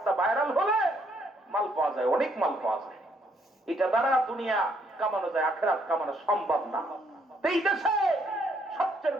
ভাইরাল হলে মাল পাওয়া যায়, অনেক মাল পাওয়া যায়। এটা দ্বারা দুনিয়া কামানো যায়, আখিরাত কামানো সম্ভব না। এই দেশে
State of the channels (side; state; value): both; normal; correlation 0.69